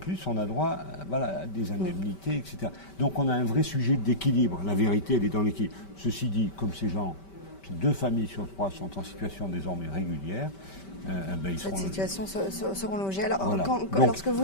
on a droit à des indemnités, etc. Donc on a un vrai sujet d'équilibre. La vérité, elle est dans l'équilibre. Ceci dit, comme ces 2 familles sur 3 sont en situation désormais régulière, ils Cette situation seront logées. Alors, voilà. lorsque vous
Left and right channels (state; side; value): late; right; 5.2 ms